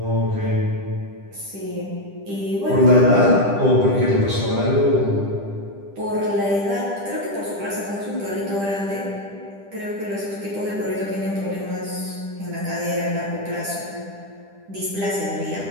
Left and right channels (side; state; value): left; late; 10 ms